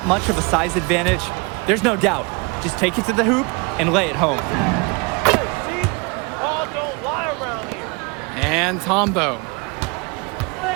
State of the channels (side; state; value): left; quieter; 29.4 dB